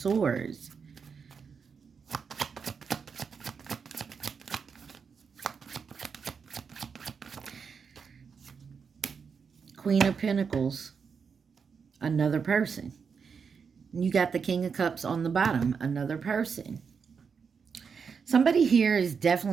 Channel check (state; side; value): quieter; left; 6.0 dB